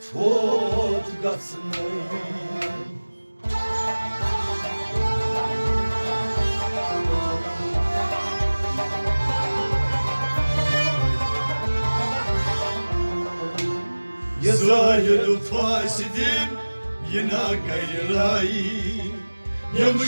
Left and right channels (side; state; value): both; inverted; correlation -1.00